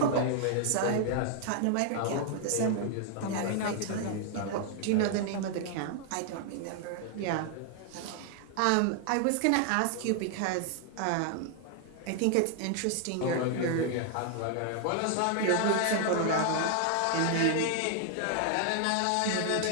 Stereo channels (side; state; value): both; different; correlation 0.00